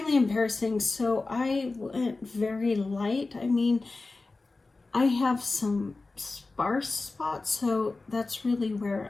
embarrassing. So I went very light. I mean, I have some sparse spots, so that's really where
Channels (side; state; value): right; quieter; 3.5 dB